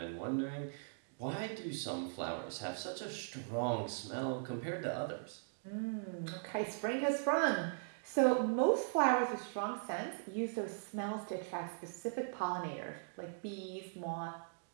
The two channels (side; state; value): left; silent; digital silence